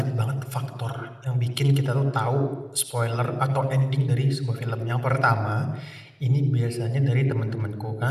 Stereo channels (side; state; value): both; identical; correlation 1.00